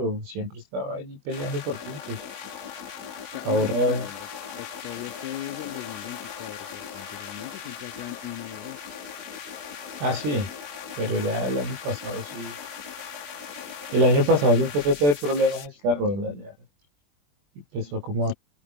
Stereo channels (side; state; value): left; late; 20 ms